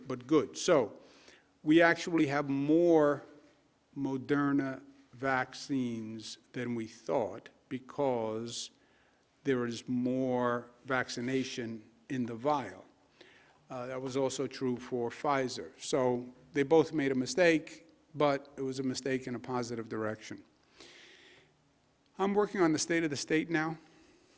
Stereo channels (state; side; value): identical; both; correlation 1.00